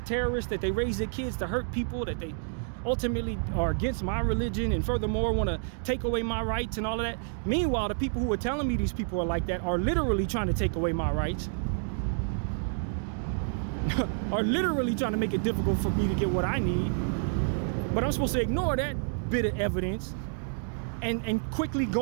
terrorists, that they raise their kids to hurt people, that they ultimately are against my religion, and furthermore want to take away my rights and all of that. Meanwhile, the people who are telling me these people are like that are literally trying to take away my rights. Are literally trying to make it difficult for me to get what I need. But I'm supposed to ignore that bit of evidence and quickly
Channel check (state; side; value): silent; left; digital silence